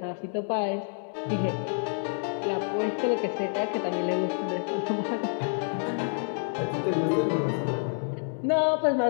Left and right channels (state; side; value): silent; right; digital silence